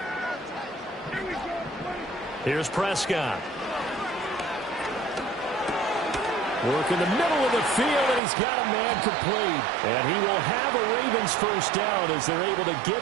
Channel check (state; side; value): drops out; left; at 8.2 s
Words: Here's Prescott. Work in the middle of the field, and he's got a man complete. And he will have a Ravens first down as they're able to